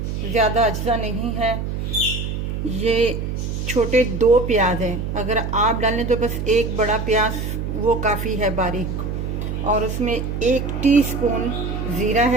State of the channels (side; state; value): right; noise; hum, 3 dB below the sound